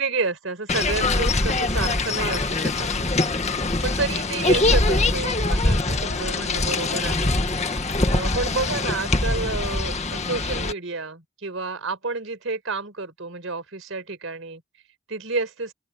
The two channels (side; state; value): both; normal; correlation 0.38